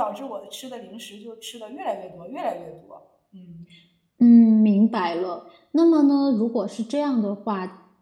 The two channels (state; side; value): identical; both; correlation 1.00